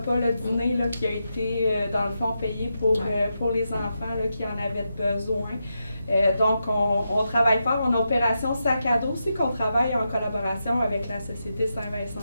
le dîner là, qui a été, dans le fond, payé pour les enfants là, qui en avaient besoin. Donc, on travaille fort. On a Opération Sac à dos aussi, qu'on travaille en collaboration avec la Société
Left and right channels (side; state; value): both; inverted; correlation -0.86